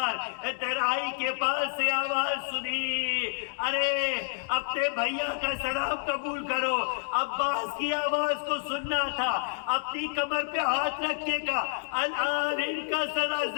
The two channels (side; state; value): right; silent; 58 dB below the other